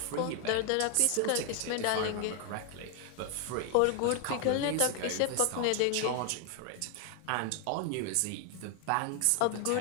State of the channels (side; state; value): both; different; correlation 0.00